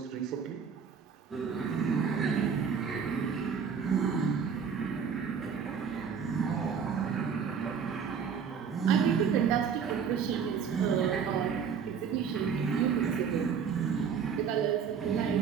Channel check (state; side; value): quieter; left; 6.7 dB